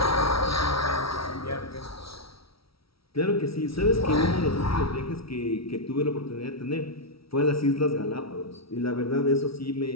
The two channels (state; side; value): late; right; 0.75 ms